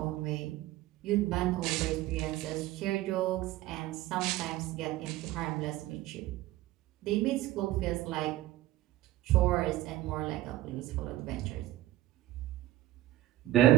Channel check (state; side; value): quieter; left; 15.8 dB